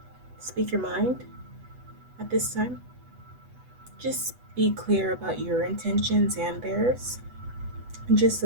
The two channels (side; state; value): left; late; 8.1 ms